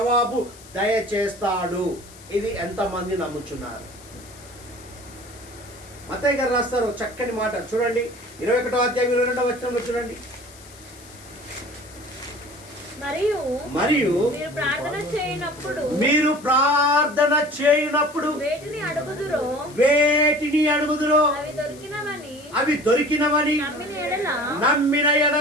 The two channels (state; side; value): noise; left; hiss, 21 dB below the sound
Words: దయచేస్తాడు. ఇది ఎంతమంది నమ్ముచున్నారు? మత్తయి గారు రాస్తారు చక్కని మాట, చూడండి 21వ అధ్యాయం 22వ వచనంలో చూడండి. మరియు మీరు ప్రార్థన చేయనప్పుడు వేటిని అడుగుదురో అవి దొరికినవని నమ్మిన